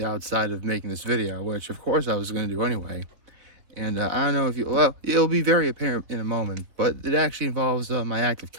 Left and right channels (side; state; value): left; late; 3.9 ms